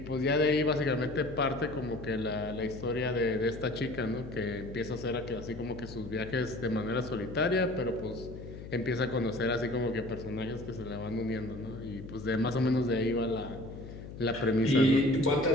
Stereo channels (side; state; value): left; noise; hum, 12 dB below the sound